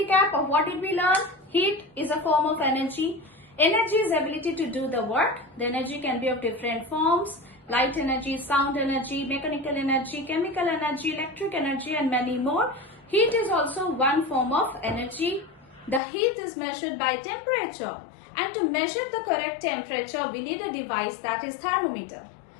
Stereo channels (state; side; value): drops out; right; at 16.0 s